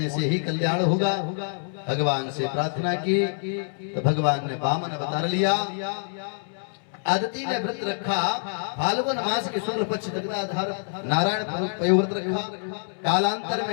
से ही कल्याण होगा। भगवान से प्रार्थना की तो भगवान ने वामन अवतार लिया। आदिति ने व्रत रखा, फाल्गुन मास के शुक्ल पक्ष दग्धाधार नारायण पयोव्रत रखा। कालांतर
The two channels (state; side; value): silent; right; 61 dB below the other